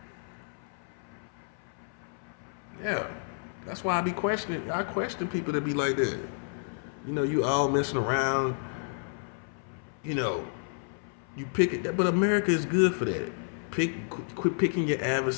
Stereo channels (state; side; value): silent; right; 57 dB below the other